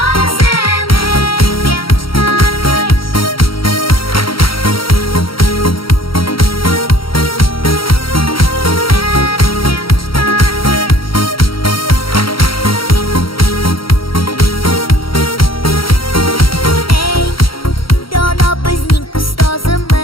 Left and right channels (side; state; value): right; late; 0.74 ms